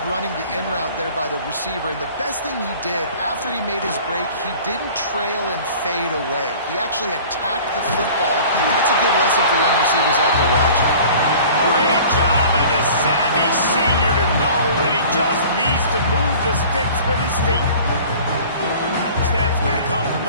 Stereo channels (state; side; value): inverted; both; correlation -0.45